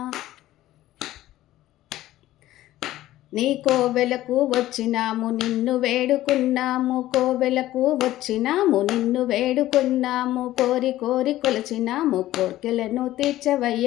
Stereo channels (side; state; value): right; quieter; 14.9 dB